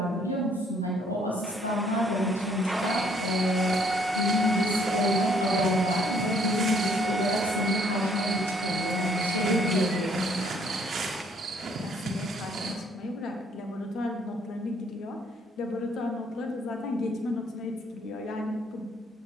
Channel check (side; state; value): both; normal; correlation 0.65